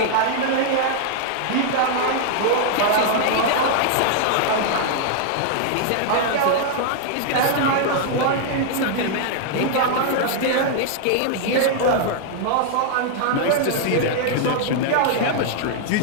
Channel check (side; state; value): both; different; correlation -0.01